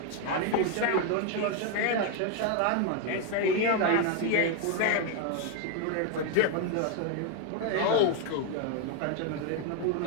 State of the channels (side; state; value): both; different; correlation 0.00